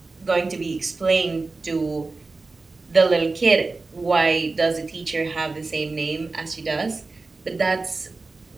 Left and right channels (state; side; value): quieter; left; 3.7 dB